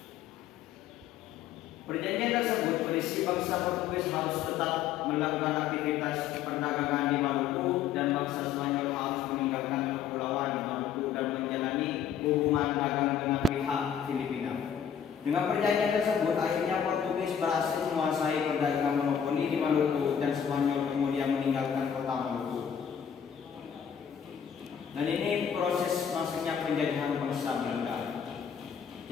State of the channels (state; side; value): quieter; right; 8.2 dB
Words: Perjanjian tersebut berisi bangsa Portugis harus tetap melakukan aktivitas perdagangan di Maluku dan bangsa Spanyol harus meninggalkan kepulauan Maluku dan menjalani hubungan dagang dengan pihak Filipina. Dengan perjanjian tersebut, akhirnya Portugis berhasil menguasai perdagangan monopoli di Maluku dan Spanyol kemudian meninggalkan kota Maluku. Dan ini proses masuknya penjajahan bangsa Belanda